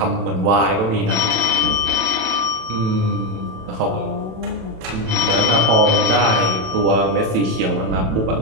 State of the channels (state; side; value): late; left; 27 ms